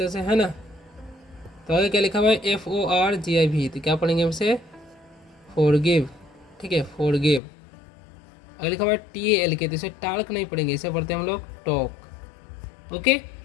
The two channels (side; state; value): right; drops out; at 7.4 s